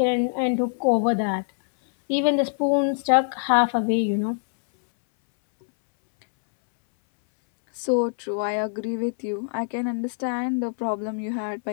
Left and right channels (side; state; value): right; silent; 63 dB below the other